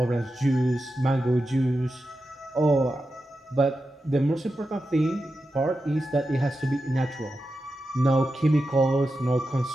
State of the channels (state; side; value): normal; both; correlation 0.90